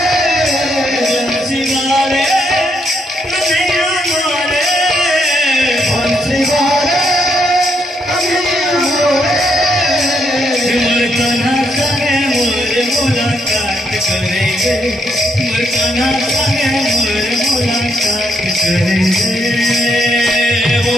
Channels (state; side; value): normal; both; correlation 0.76